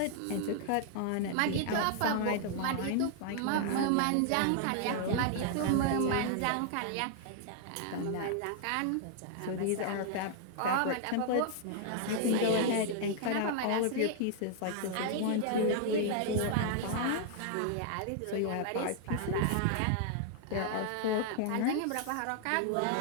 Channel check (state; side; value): different; both; correlation 0.00